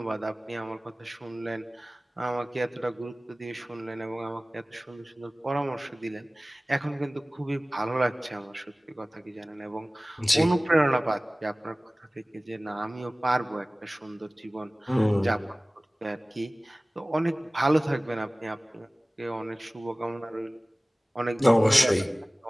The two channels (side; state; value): both; normal; correlation 0.98